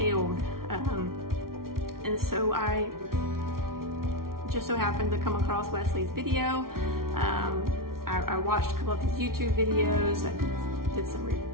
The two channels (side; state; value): left; late; 0.93 ms